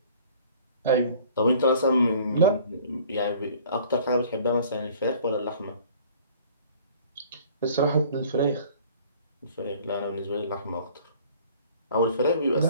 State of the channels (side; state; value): both; inverted; correlation -0.51